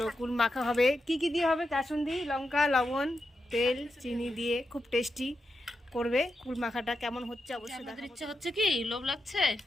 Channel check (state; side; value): normal; both; correlation 0.88